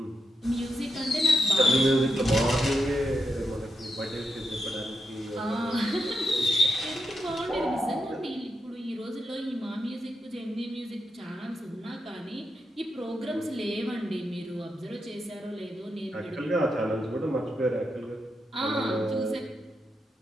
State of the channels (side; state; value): both; normal; correlation 0.85